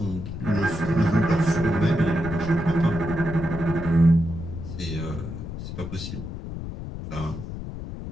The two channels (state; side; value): noise; left; rumble, 8 dB below the sound